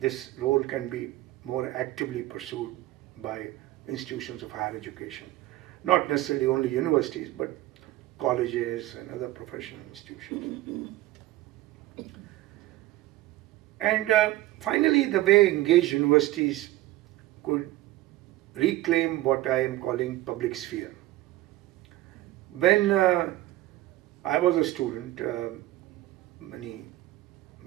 role can be more actively pursued by institutions of higher education. Not necessarily only universities, but colleges and other professional institutions. And finally, the way engaged universities could reclaim what I am calling public sphere. When I was a student many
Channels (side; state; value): left; quieter; 16.5 dB